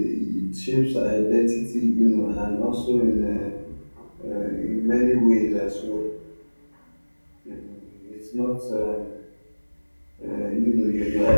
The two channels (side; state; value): both; inverted; correlation -1.00